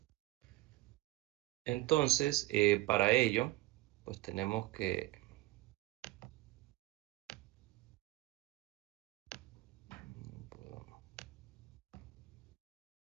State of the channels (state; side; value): quieter; left; 18.9 dB